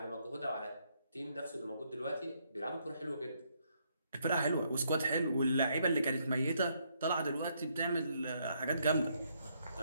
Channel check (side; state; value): both; inverted; correlation -0.73